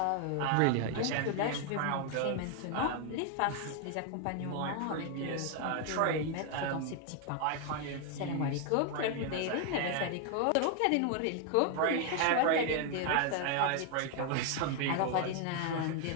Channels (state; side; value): different; both; correlation 0.01